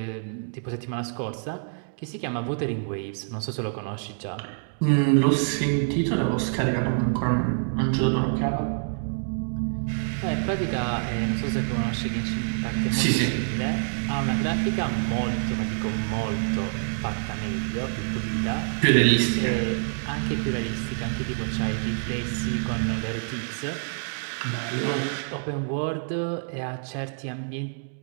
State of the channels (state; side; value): silent; left; digital silence